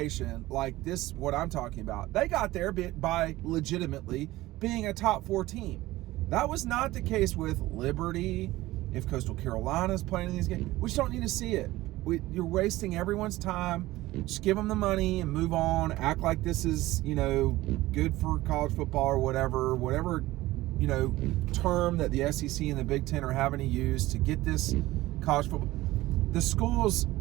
like this, what I'm talking about. They got there by legitimately being a top 4 team. That was not the case with Liberty. If Coastal Carolina's playing in these games, we just don't need to see it. You're wasting everyone's time. Just give them the money and move on. Act like this is, good for college football or whatever, term that the SEC and the Big Ten are having to use to get this college football. The schools,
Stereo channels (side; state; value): left; quieter; 17.6 dB